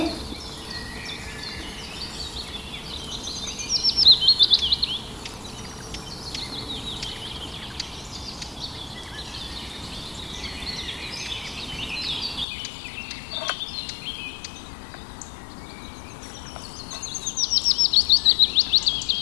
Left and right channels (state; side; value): drops out; right; at 12.5 s